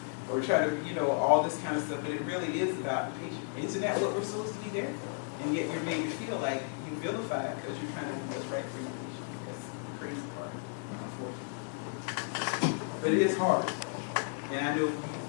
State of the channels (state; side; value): silent; right; 55 dB below the other